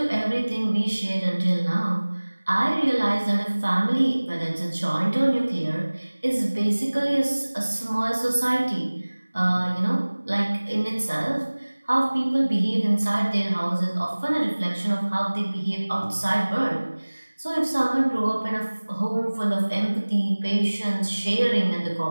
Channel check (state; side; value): inverted; both; correlation -1.00